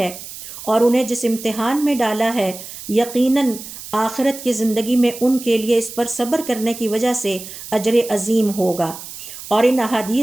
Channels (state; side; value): noise; right; hiss, 12 dB below the sound